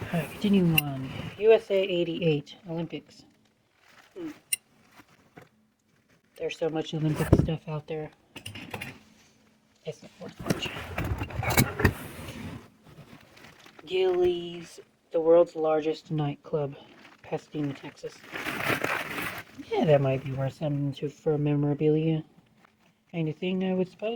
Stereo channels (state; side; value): identical; both; correlation 1.00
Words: Alright, continuing on. USA 88 Olympics. There's so much Olympic stuff out there. It's not worth much. Gilley's, the world's largest nightclub, Pasadena, Texas. Yeah, that might be worth something for memorabilia kind of thing, I would